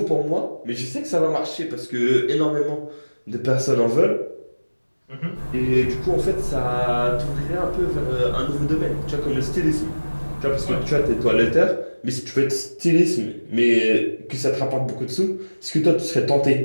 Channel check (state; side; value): inverted; both; correlation -1.00